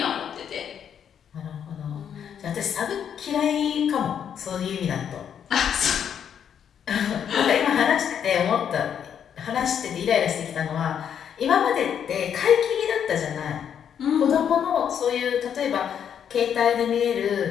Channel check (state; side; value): quieter; right; 8.5 dB